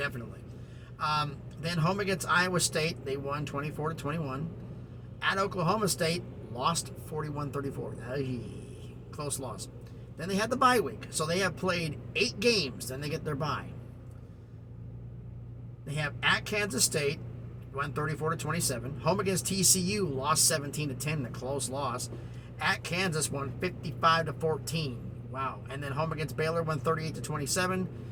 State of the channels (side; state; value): both; identical; correlation 1.00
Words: Then home against Iowa State, they won 24-21. At Oklahoma State, lost 41-34. Close loss. Then they had the bye week. So they have played 8 games. Then they get their bye. They have at Kansas State, won 34-27. Home against TCU, lost 17-10, a close loss. At Kansas, won 55-14. Wow. And then home against Baylor, won 38-27.